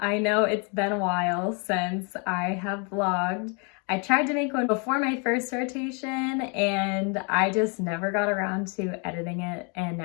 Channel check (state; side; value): quieter; right; 35.2 dB